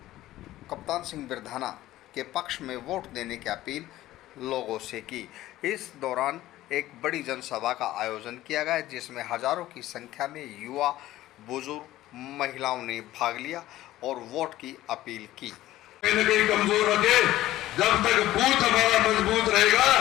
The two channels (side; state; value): right; quieter; 15.2 dB